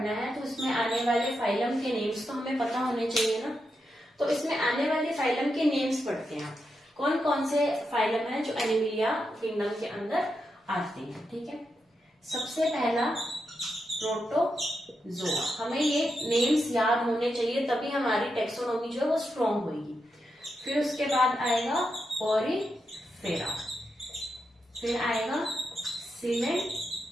है तो इसमें आने वाले फाइलम के नेम्स तो हमें पता होने चाहिए ना। तो इसमें आने वाले फाइलम के नेम्स पढ़ते हैं। कौन कौन से फाइलम है जो एनिमेलिया किंगडम के अंदर आते हैं? ठीक है, सबसे पहला प्रोटोजोआ। हमें ये नेम्स याद होने चाहिए, तभी हमारी टेक्सोनॉमी जो है वो स्ट्रॉन्ग होगी। फिर उसके बाद आएगा पोरीफेरा, फिर आएगा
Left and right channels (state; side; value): normal; both; correlation 0.85